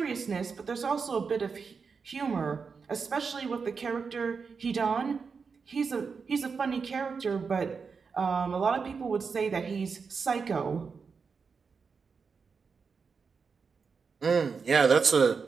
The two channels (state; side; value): quieter; left; 5.4 dB